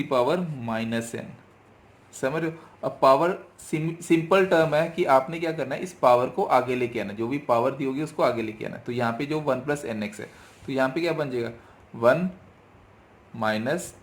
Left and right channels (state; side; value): identical; both; correlation 1.00